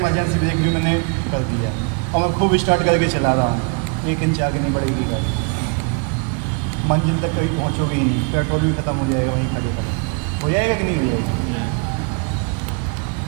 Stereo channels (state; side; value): quieter; left; 34.8 dB